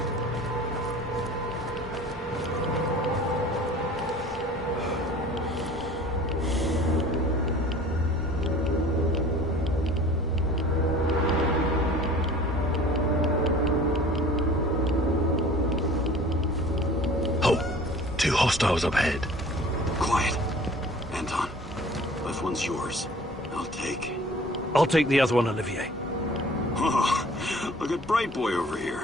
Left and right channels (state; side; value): normal; both; correlation 0.46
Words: Oh, 2 hostiles up ahead. Quiet. Anton, left one's yours. I'll take the other one, Olivier. Oh, look at Bright Boy over here.